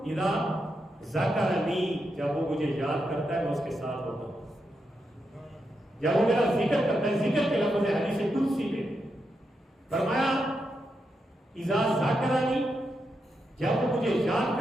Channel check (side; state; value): both; normal; correlation 0.85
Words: اذا ذکرنی، جب وہ مجھے یاد کرتا ہے میں اس کے ساتھ ہوتا ہوں، جب وہ میرا ذکر کرتا ہے، ذکر کے لفظ ہے حدیث قدسی میں، فرمایا اذا ذکرنی، جب وہ مجھے یاد